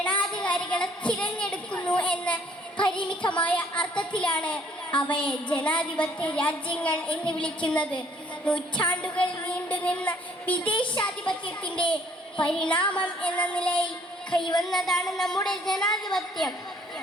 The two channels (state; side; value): normal; both; correlation 0.61